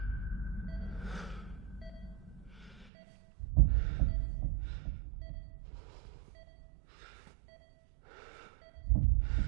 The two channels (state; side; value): drops out; left; at 2.9 s